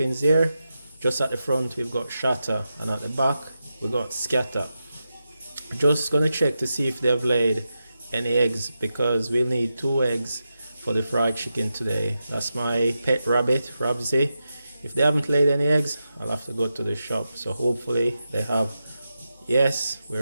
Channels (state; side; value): inverted; both; correlation -0.89